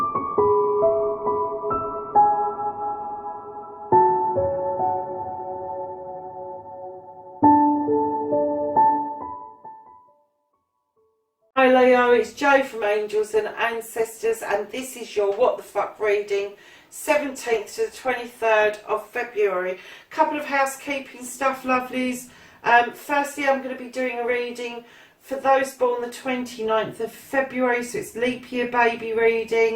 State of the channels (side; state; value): both; identical; correlation 1.00